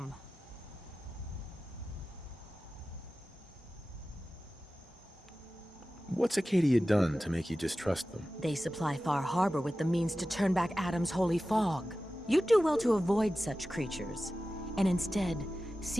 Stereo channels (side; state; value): both; normal; correlation 0.95